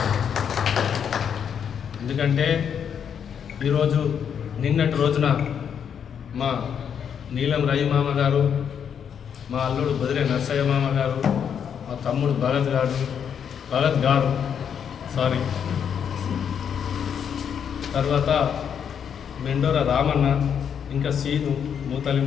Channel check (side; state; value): right; quieter; 7.9 dB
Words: ఎందుకంటే ఈరోజు నిన్నటి రోజున మా నీలం రవి మామ గారు, మా అల్లుడు బదిరే నర్సయ్య మామ గారు, మా తమ్ముడు భగత్ గారు తర్వాత మెండోర రామన్న, ఇంకా సీను,